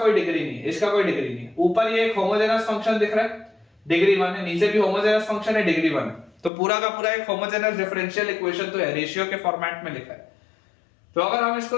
डिग्री नहीं है, इसका कोई डिग्री नहीं है। ऊपर ये एक होमोजेनस फंक्शन दिख रहा है, डिग्री 1 है, नीचे भी होमोजेनस फंक्शन है, डिग्री 1 है। तो पूरा का पूरा एक होमोजेनस डिफरेंशियल इक्वेशन तो है, रेशियो के फॉर्मेट में लिखा है। तो अगर हम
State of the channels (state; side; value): drops out; right; at 6.5 s